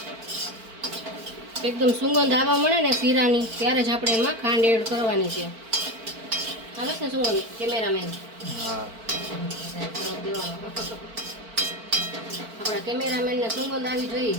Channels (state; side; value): late; left; 4.5 ms